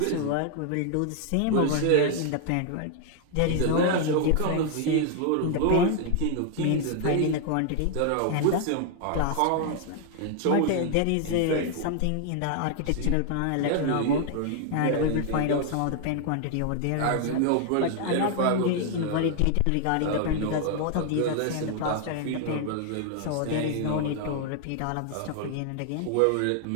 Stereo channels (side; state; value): both; different; correlation 0.00